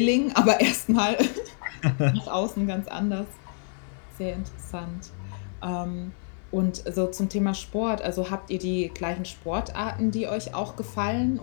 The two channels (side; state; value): right; silent; 60 dB below the other